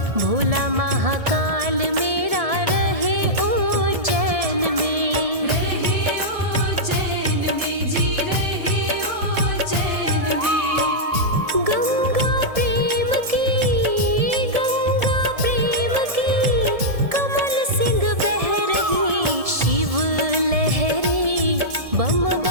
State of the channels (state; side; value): late; left; 1.7 ms